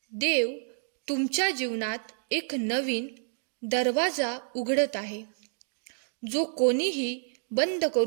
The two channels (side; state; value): left; silent; digital silence